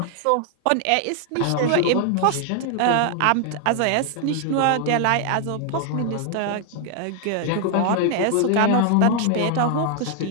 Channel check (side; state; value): both; different; correlation 0.00